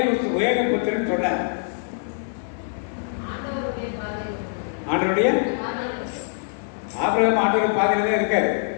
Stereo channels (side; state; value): right; silent; 63 dB below the other